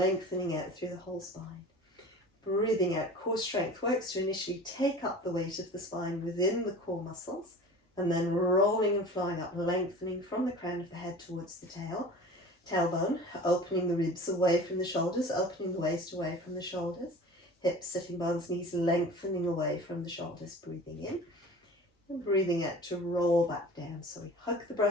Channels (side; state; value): both; normal; correlation 0.40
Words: out through the whole spine. Breathing out, core strength works to initially take up the weight of the spine within the core muscles, and then rolling and flowing up, lengthening from the crown of the head towards the tailbone, opening the ribs away from the shoulders, opening the waist away from the shoulders, hips, sitting bones, knees lengthening away from the shoulders, breathing in, and breathing out to roll back down. So we hug the